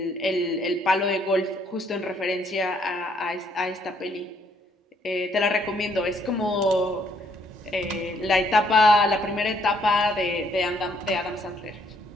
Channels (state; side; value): normal; both; correlation 0.68